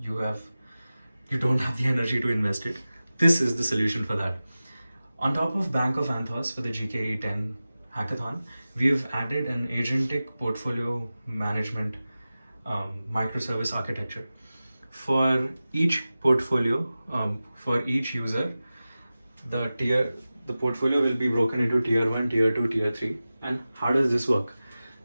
don't have the energy to invest it, this is the solution for that. On top of Bank of Anthos for the GKE 10 Hackathon, we've added an Agentic portfolio management microservice architecture. For each portfolio, for each user, the portfolio will be broken into tier 1, tier 2, tier 3. And how does this work?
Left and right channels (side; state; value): both; inverted; correlation -0.96